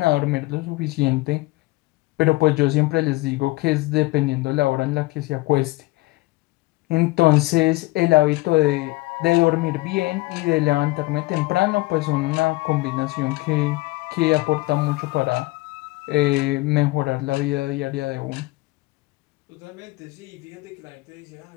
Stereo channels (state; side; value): quieter; right; 21.0 dB